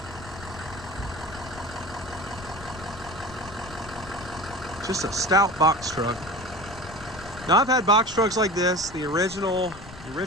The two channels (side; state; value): left; noise; rumble, 16 dB below the sound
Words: Just a stout box truck. Now, I've had box trucks like this. The